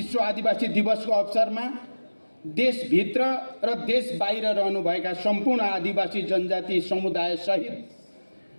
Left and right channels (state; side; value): inverted; both; correlation -1.00